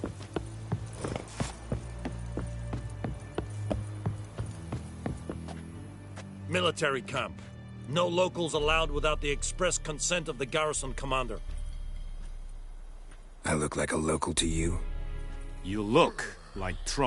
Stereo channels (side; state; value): both; identical; correlation 1.00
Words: Military camp. No locals allowed without the express consent of the garrison commander. I look like a local to you? You look like